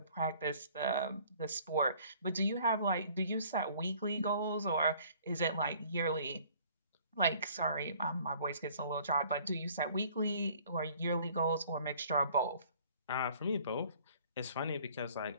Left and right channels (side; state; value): both; inverted; correlation -0.55